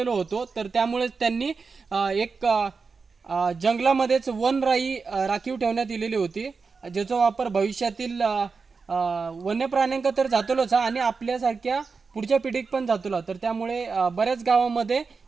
होतो. तर त्यामुळे त्यांनी एक जंगलामध्येच वनराई राखीव ठेवण्यात दिलेली होती, ज्याचा वापर भविष्यातील वन्य प्राण्यांका तर जातलोच आणि आपल्यासारख्या पुढच्या पिढीक पण जातलो. तर त्यामुळे बऱ्याच गावामध्ये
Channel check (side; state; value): left; quieter; 4.8 dB